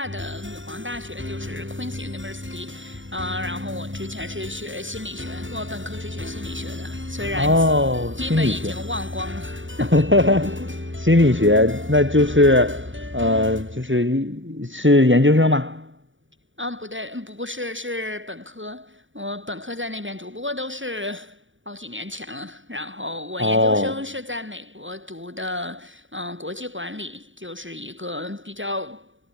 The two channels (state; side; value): late; left; 0.56 ms